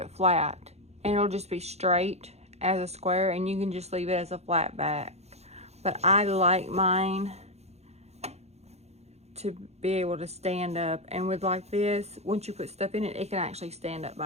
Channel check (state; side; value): late; left; 0.31 ms